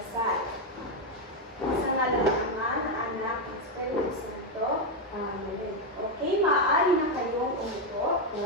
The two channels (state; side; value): normal; both; correlation 0.04